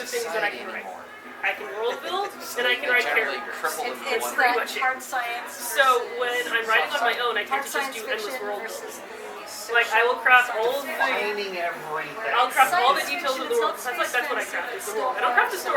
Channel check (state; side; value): identical; both; correlation 1.00